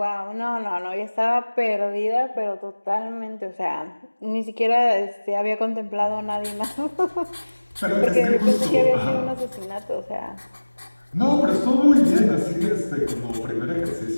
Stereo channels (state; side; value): inverted; both; correlation -1.00